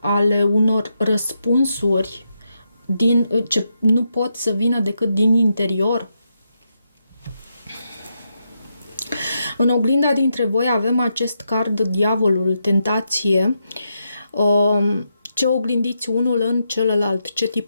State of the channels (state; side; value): inverted; both; correlation -0.83